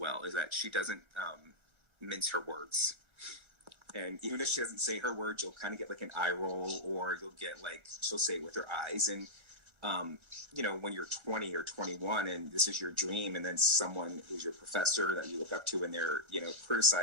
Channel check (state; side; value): late; left; 1.3 ms